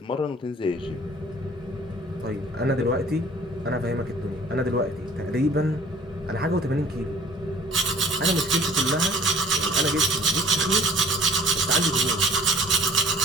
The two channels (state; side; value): normal; both; correlation 0.50